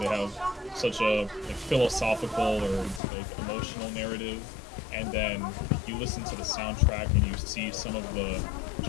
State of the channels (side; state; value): right; drops out; at 3.0 s